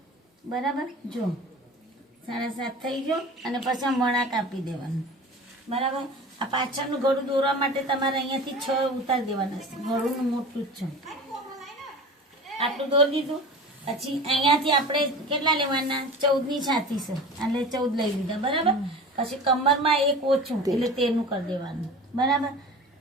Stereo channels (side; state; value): both; normal; correlation 0.36